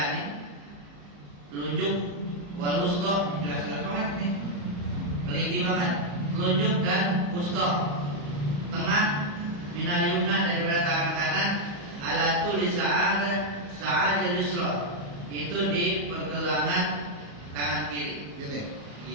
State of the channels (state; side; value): late; left; 34 ms